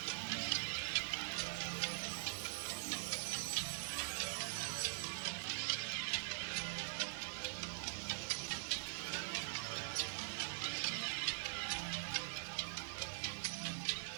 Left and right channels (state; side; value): silent; left; digital silence